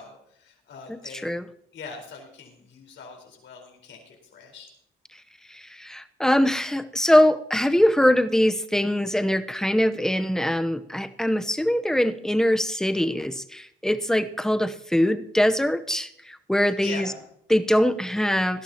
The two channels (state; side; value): normal; both; correlation 0.95